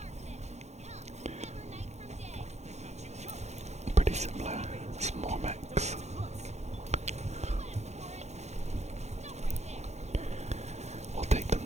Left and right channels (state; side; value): late; left; 0.32 ms